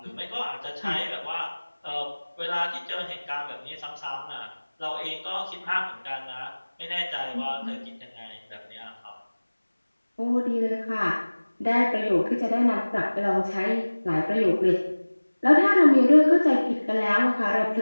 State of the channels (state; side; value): inverted; both; correlation -1.00